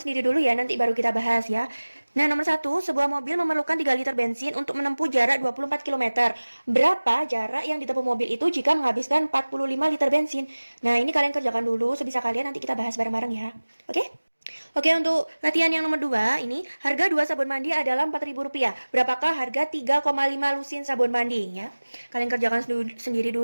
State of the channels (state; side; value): inverted; both; correlation -1.00